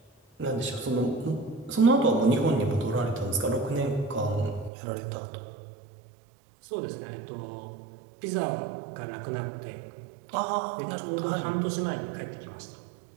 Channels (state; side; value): drops out; left; at 4.7 s